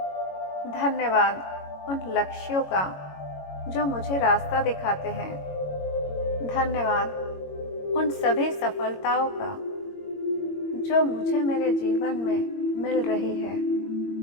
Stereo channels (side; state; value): right; late; 22 ms